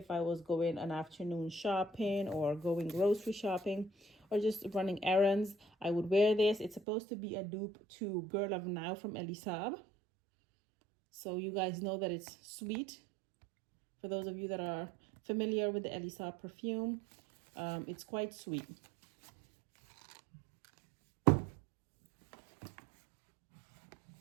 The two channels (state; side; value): drops out; left; at 6.8 s